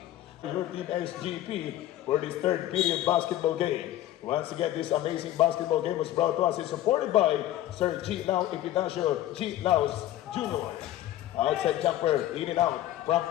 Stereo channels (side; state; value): right; quieter; 13.7 dB